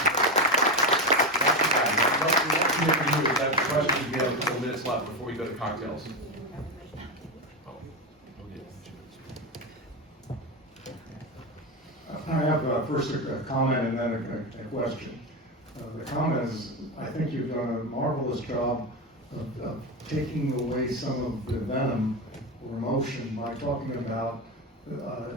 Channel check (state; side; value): normal; both; correlation 0.14